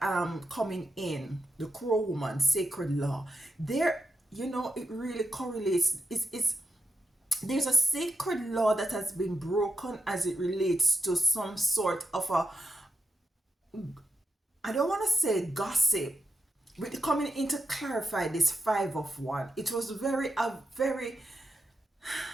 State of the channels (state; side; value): normal; both; correlation 0.86